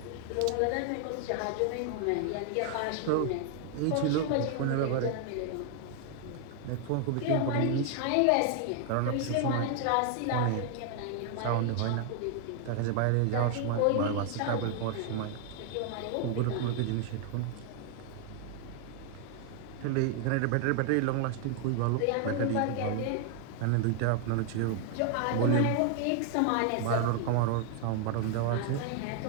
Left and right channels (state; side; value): different; both; correlation 0.00